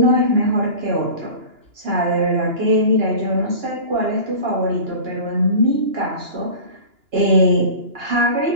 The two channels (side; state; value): left; late; 2.9 ms